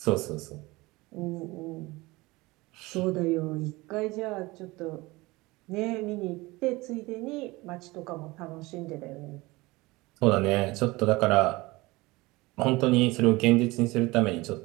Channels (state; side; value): quieter; left; 21.8 dB